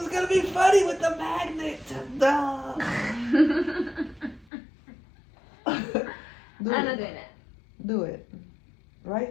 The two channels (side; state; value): right; drops out; at 4.5 s